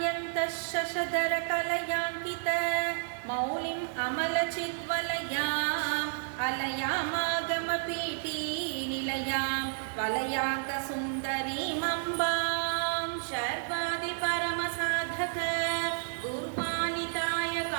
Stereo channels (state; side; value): silent; left; 57 dB below the other